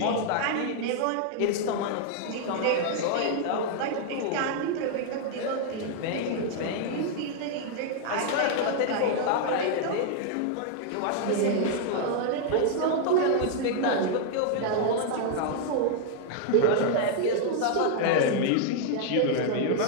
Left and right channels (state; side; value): different; both; correlation 0.00